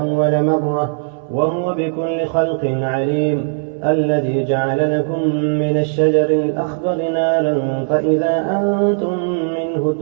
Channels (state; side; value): silent; left; digital silence